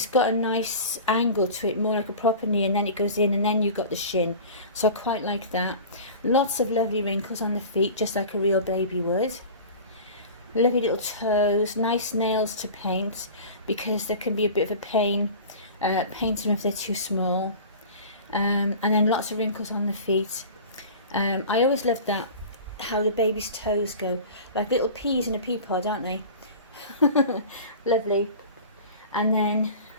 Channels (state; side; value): inverted; both; correlation -0.37